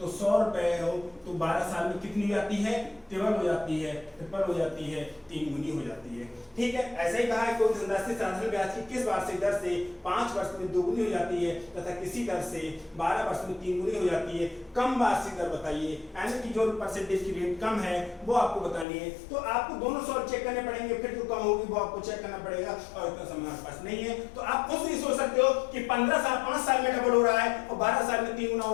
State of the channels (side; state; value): right; drops out; at 18.9 s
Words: 100 रुपए हो तो 12 साल में कितनी हो जाती है? ट्रिपल हो जाती है, ट्रिपल हो जाती है, 3 गुनी हो जाती है। ठीक है, ऐसे ही कहा है कोई धनराशि साधारण ब्याज की किस वार्षिक दर से 5 वर्ष में दोगुनी हो जाती है तथा किसी दर से 12 वर्ष में 3 गुनी हो जाती है? कम वार्षिक दर बताइए, यानी कि जो परसेंटेज की रेट कम है वो आपको बतानी है। तो आपको दोनों सॉल्व चेक करने पड़ेंगे, फिर जो कम होगी वो आपको चेक करना पड़ेगा, और इतना समय आपके पास नहीं है। तो आप खुद नहीं सोच सकते हो कि 5 साल में डबल हो रहा है और 12 साल में 3 गुना